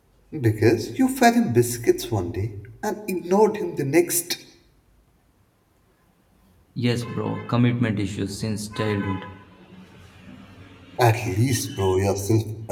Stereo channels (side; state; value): both; identical; correlation 1.00